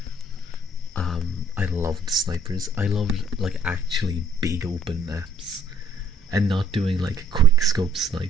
I loved snipers. I loved like actually big open maps, and not doing like quick scope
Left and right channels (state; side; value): normal; both; correlation 0.61